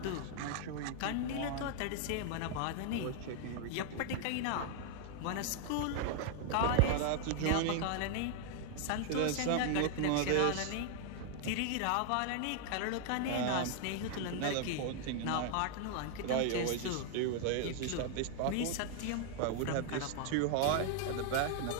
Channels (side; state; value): both; different; correlation 0.00